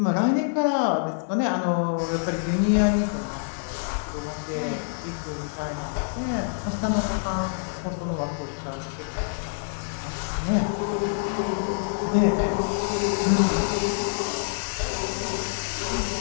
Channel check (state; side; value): silent; right; digital silence